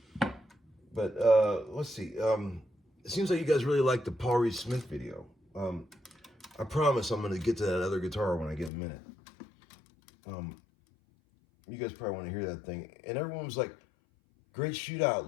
But let's see. It seems like you guys really like the Paul Reed Smith video. I promise I'm going to get to that other guitar when I get a minute. You guys probably want to hear that thing. And everyone was like, great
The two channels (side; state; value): right; drops out; at 8.7 s